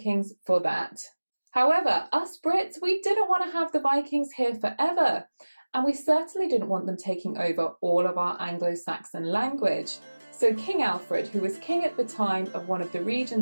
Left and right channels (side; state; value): both; inverted; correlation -1.00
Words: for that. However, us Brits, we didn't want to have the Vikings here forever, and we certainly didn't want them taking over all of our Anglo-Saxon language. So King Alfred, who was king at the time of one of the